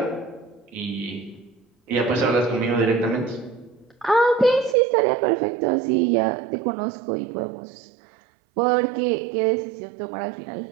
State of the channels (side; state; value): left; drops out; at 4.8 s